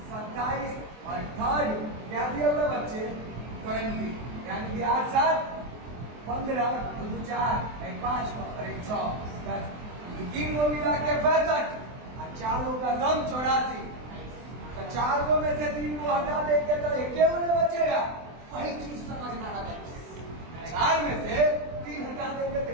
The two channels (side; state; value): left; late; 24 ms